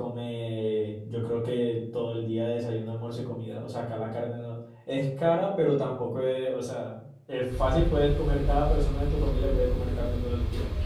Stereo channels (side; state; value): both; identical; correlation 1.00